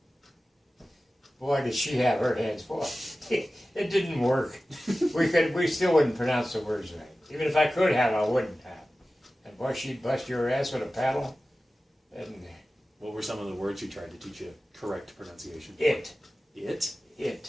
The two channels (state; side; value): normal; both; correlation 0.95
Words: Boy, did she have her hands full. It didn't work. We still wouldn't pronounce the words right. Even if I could have, I wouldn't have. And boy, she'd bust your ass with a paddle. And what were some of the words she tried to teach you correct pronunciation? It.